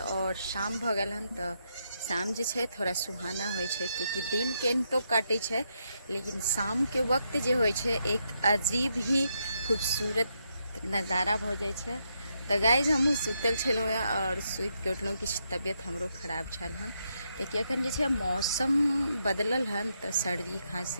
शाम भ गेल हन। तो शाम जे छै थोड़ा सुहाना होइ छै क्योंकि दिन के तो काटे छै, लेकिन शाम के वक्त जे होइ छै एक अजीब ही खूबसूरत नज़ारा भ जाइ छै। तो गाइज हमहूँ सुतल छलहुँ और सुति के उठलहुँ। किछु तबियत हमरो खराब छल हन कियाकि अखन जे छै मौसम बदलल हन तो सर्दी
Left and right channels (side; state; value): both; inverted; correlation -0.79